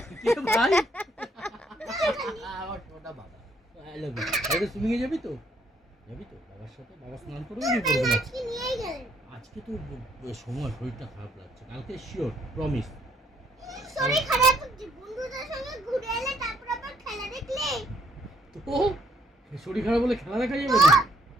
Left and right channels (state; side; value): normal; both; correlation 0.68